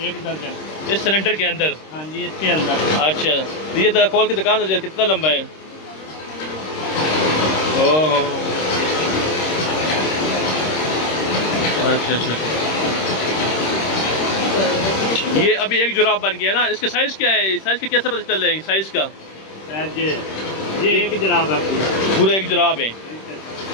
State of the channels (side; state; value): right; late; 26 ms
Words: दर्जन इस सिलेंडर के अंदर? हाँ जी, इसके अंदर। अच्छा, तो ये तरह खोल के दिखा दो कितना लंबा है। ओह, अच्छा अच्छा, ये अभी एक जुराब बन गया ना। इसके साइज क्या है? साइज का कैसे पता चल रहा है साइज का? ये एक जुराब है, पूरा एक जुराब है।